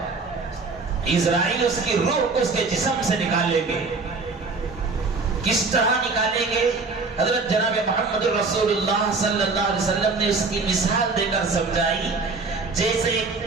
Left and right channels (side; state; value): left; quieter; 4.1 dB